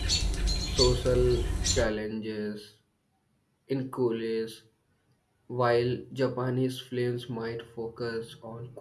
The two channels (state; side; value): identical; both; correlation 1.00